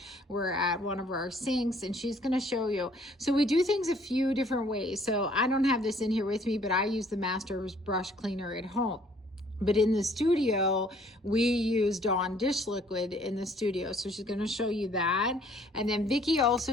We're at one of our sinks and she's going to show you. So we do things a few different ways. So I don't have this in here with me, but I use the Master's brush cleaner at home. But in the studio, we use Dawn dish liquid in the studio. So she's going to show you that. And then Vicki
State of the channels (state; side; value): normal; both; correlation 0.60